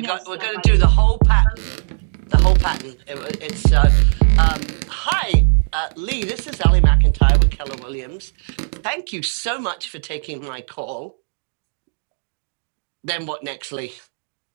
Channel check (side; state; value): left; silent; 63 dB below the other